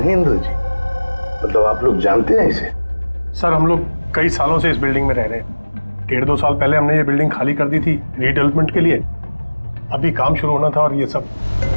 जी? मतलब आप लोग जानते हैं इसे? सर हम लोग कई सालों से इस बिल्डिंग में रह रहे हैं। 1.5-2 साल पहले हमने ये बिल्डिंग खाली कर दी थी रीडेवलपमेंट के लिए। अभी काम शुरू होना था और ये सब।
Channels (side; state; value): both; inverted; correlation -1.00